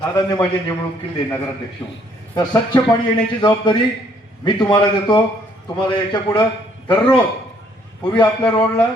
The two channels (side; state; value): both; normal; correlation 0.65